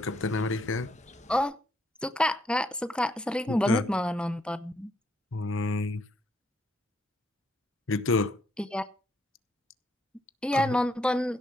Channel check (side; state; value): both; normal; correlation 0.73